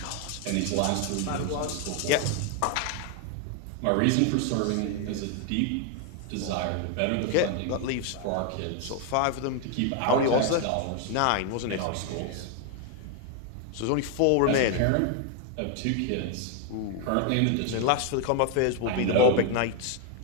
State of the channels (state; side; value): different; both; correlation 0.01